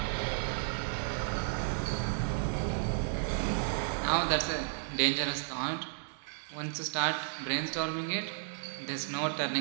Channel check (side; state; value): left; silent; digital silence